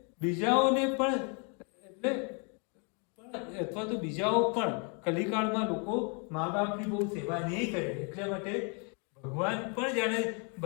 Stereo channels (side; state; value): right; quieter; 36.8 dB